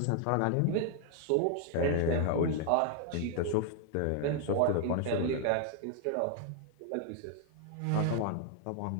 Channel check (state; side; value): different; both; correlation 0.00